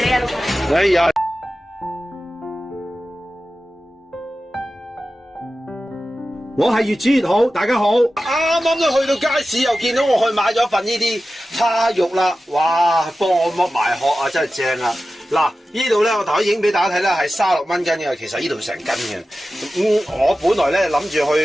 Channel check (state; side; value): normal; both; correlation 0.94